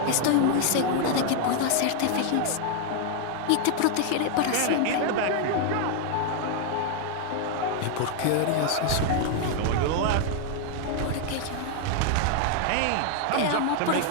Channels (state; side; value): different; both; correlation 0.00